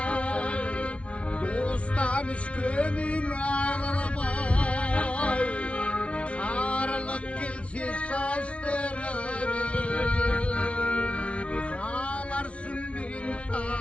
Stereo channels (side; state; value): right; late; 0.062 ms